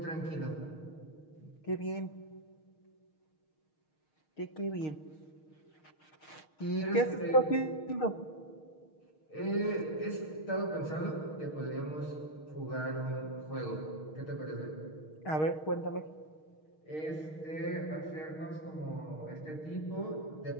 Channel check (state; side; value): late; right; 6.4 ms